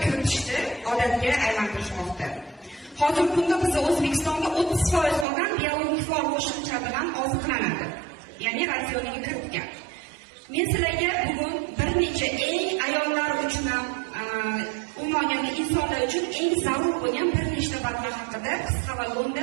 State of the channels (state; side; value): drops out; left; at 5.2 s